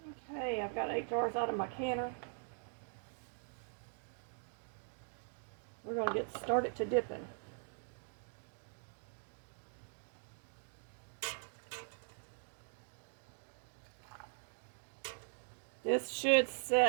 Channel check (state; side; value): silent; left; digital silence